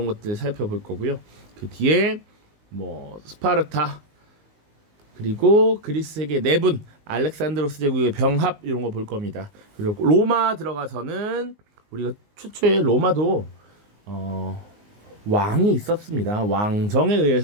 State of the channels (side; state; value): left; late; 19 ms